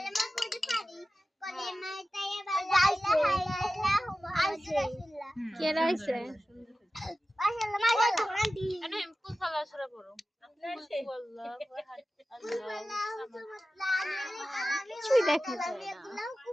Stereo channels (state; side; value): normal; both; correlation 0.95